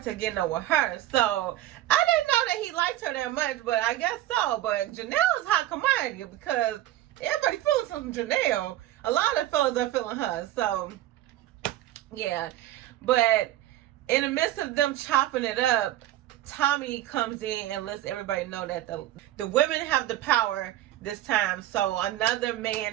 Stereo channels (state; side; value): quieter; left; 14.1 dB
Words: to getting over her. So I didn't know that he liked her that much, but I guess so. But Janelle is hot commodity because everybody feeling some Janelle. A lot of fellas are feeling her. So yeah, but in the midst of them chopping it up, Tommy comes in and lets everybody know that the women have the power this time, so another